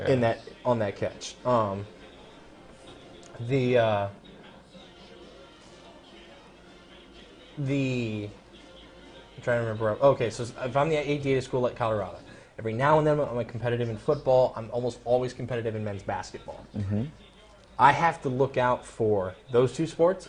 On that catch. I'm trying to remember. Okay, so if I'm the AD at a school like Colorado, every now and then I'm competitive in football. I'm almost always competitive in men's basketball. I have to look out for those 2 sports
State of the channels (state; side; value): identical; both; correlation 1.00